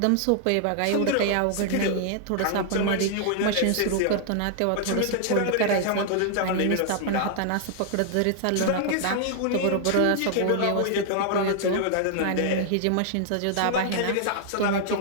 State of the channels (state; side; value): different; both; correlation -0.01